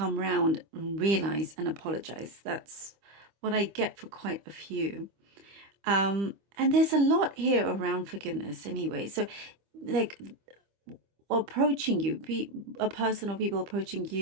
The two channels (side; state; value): left; late; 25 ms